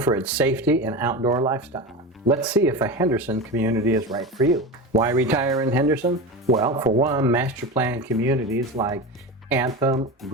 its safety and outdoor lifestyle. Let's see if a Henderson community is right for you. Why retire in Henderson? Well, for one, master plan communities like Anthem,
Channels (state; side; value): normal; both; correlation 0.25